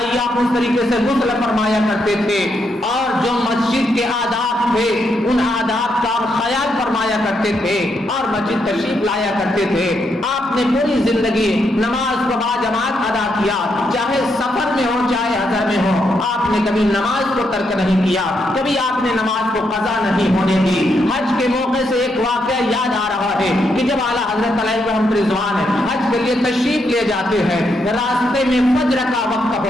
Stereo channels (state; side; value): normal; both; correlation 0.79